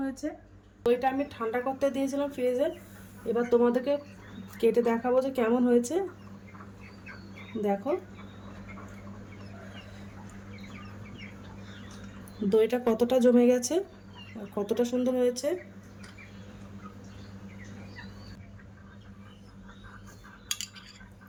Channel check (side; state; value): both; identical; correlation 1.00